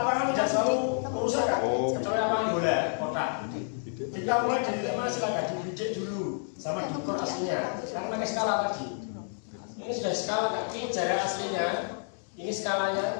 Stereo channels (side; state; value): right; silent; digital silence